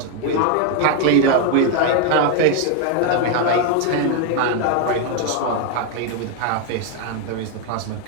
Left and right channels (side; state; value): both; different; correlation 0.01